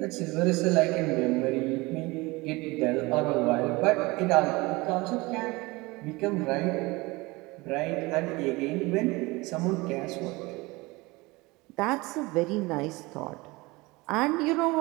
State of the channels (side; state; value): left; quieter; 22.9 dB